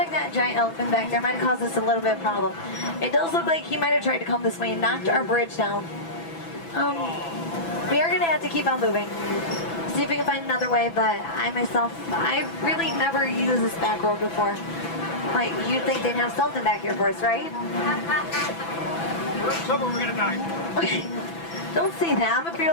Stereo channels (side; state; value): right; late; 6.0 ms